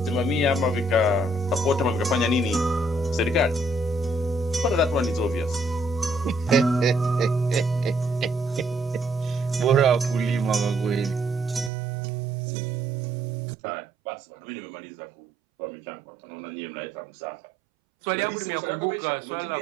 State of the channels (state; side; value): drops out; left; at 11.7 s